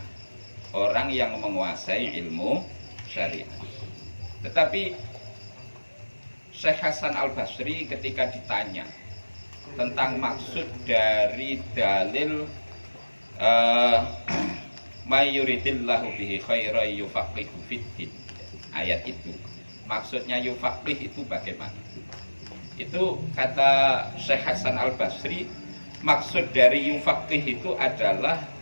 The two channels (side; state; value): both; inverted; correlation -1.00